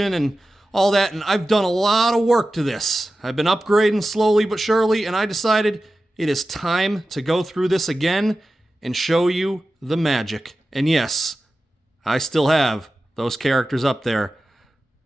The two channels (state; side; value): normal; both; correlation 0.94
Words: and all that, and I've done a lot of work to this. I've been upgrading slowly but surely, and I decided it is time to go through this again and show you the magic. And yes, I still have those characters up there.